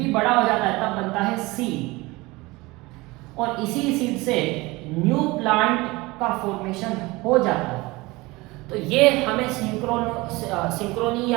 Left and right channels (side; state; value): left; quieter; 22.2 dB